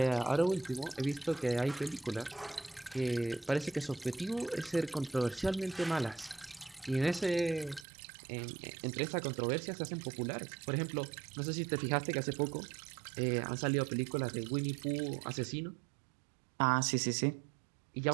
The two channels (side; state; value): left; drops out; at 7.9 s